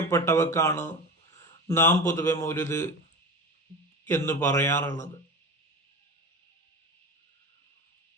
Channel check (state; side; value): normal; both; correlation 0.28